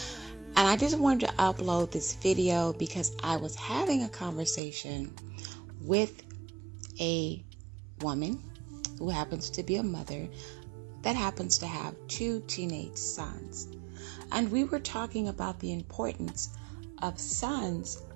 And I just wanted to upload this video because I was having a conversation with a woman who happens to be a mother that happens to have 2 teenage sons. And we were talking about the importance of sons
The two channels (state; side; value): drops out; left; at 4.6 s